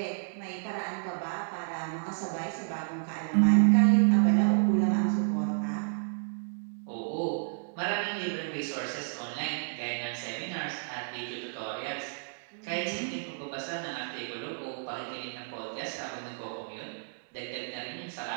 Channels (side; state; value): left; silent; digital silence